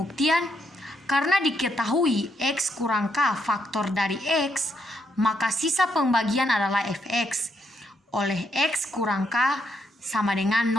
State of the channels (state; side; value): normal; both; correlation 0.76